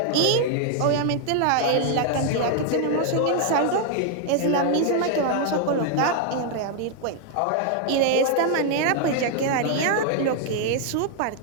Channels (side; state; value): both; different; correlation 0.00